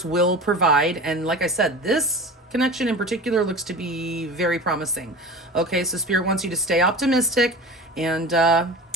will provide. And like I said, this connection in particular looks to be very promising. Okay, so Spirit wants you to stay optimistic and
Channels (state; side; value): normal; both; correlation 0.35